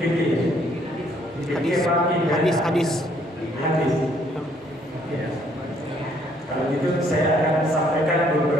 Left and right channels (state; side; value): normal; both; correlation 0.66